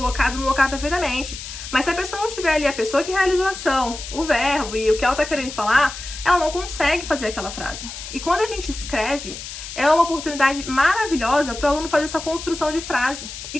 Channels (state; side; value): noise; left; hiss, 10 dB below the sound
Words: no lugar perfeitamente. Mas se a pessoa não tiver ali a pessoa que realizou a ação, o verbo e o que ela tá querendo falar, ela não consegue fazer aquela frase. E quando a gente escreve, é uma oportunidade maravilhosa para o aluno fazer essa construção de frase. E